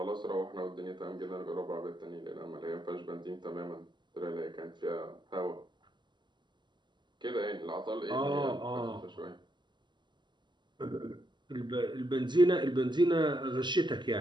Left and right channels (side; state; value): left; late; 0.22 ms